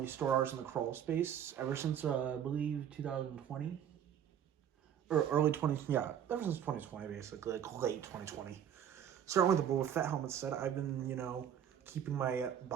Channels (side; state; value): left; quieter; 9.4 dB